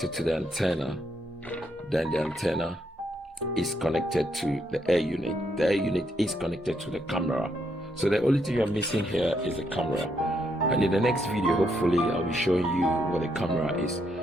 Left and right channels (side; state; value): both; normal; correlation 0.76